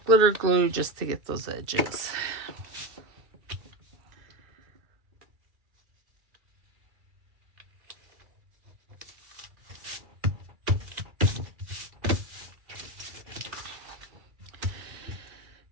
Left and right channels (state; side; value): late; left; 2.3 ms